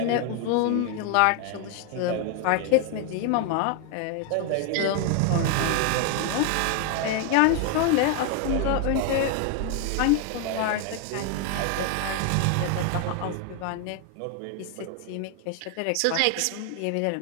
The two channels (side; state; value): both; different; correlation 0.00